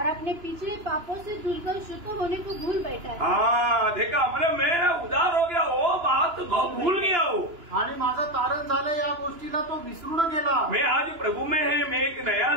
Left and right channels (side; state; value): left; late; 2.9 ms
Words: अपने पिछले पापों से धुलकर शुद्ध होने को भूल बैठा है. हाँ देखा, मतलब मैं उदार हो गया, वो बात को भूल गया हो. आणि माझं तारण झालं या गोष्टीला तो विसरून गेला. मैं आज प्रभु में है, मैं एक नया